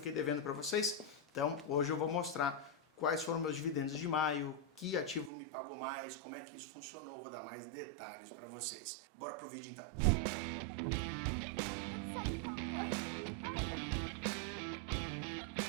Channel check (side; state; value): left; drops out; at 5.3 s